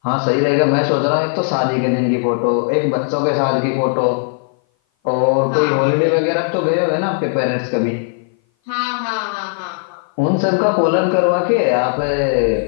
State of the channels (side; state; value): right; silent; 57 dB below the other